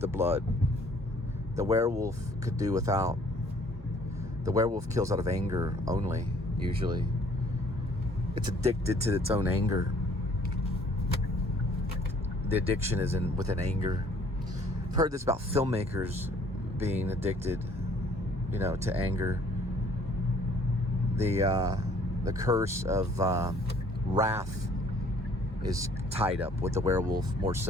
blood. The werewolf could do without. The werewolf kills out of anger only, usually. It's addicted to its own anger. The addiction is within anger. I've heard this about filmmakers being addicted, to anger. The curse of wrath is tied up with the werewolf more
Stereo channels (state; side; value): normal; both; correlation 0.58